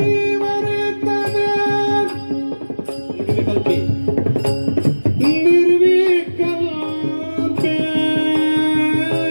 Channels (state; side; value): inverted; both; correlation -1.00